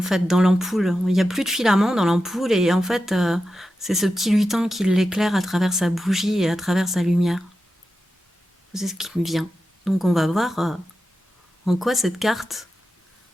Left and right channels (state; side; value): normal; both; correlation 0.91